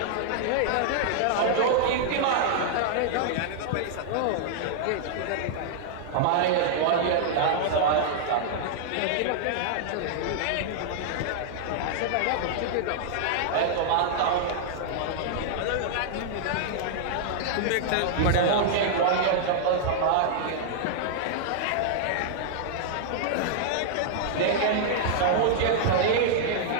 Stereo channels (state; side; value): different; both; correlation -0.01